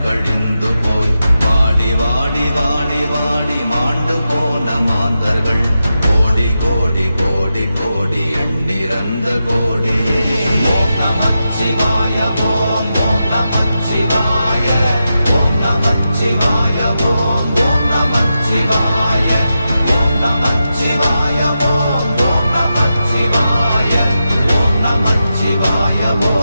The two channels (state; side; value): inverted; both; correlation -0.89